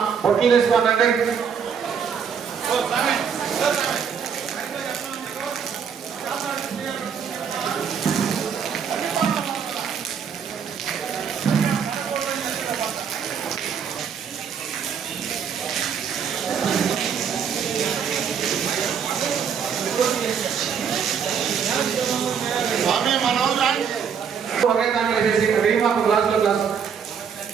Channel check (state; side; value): quieter; left; 7.1 dB